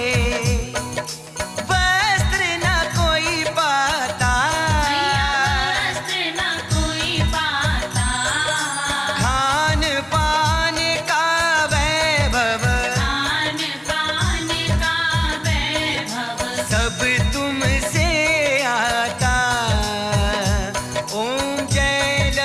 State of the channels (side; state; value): both; identical; correlation 1.00